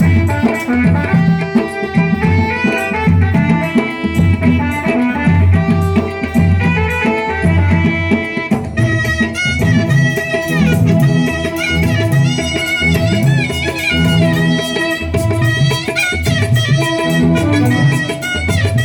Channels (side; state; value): both; identical; correlation 1.00